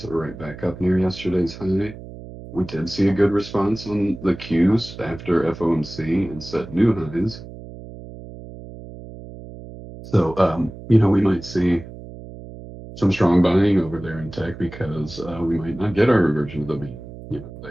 right back up near yesterday's high. We did see a good response on the Qs after FOMC and set new highs. So, we might see some strong buying over there in tech because we might not get our reversion to the mean.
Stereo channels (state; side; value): noise; right; hum, 14 dB below the sound